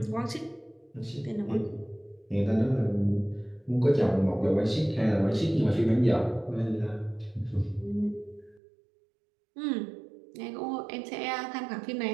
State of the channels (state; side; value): drops out; left; at 8.6 s